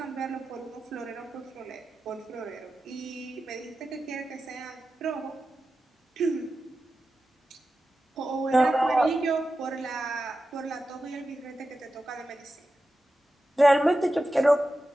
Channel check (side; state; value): both; normal; correlation 0.92